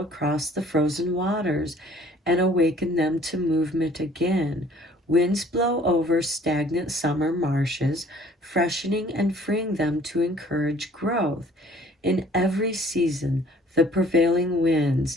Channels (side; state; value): both; normal; correlation 0.55